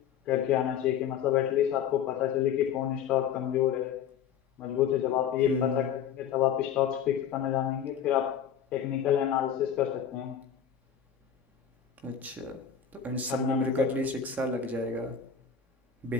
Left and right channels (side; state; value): right; quieter; 8.2 dB